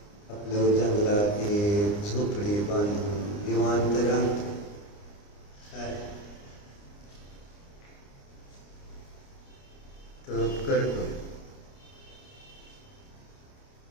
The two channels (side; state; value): right; late; 29 ms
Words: आपलं जंगलात एक झोपडी बांधून निवांत राहतो. काय तप करतोय.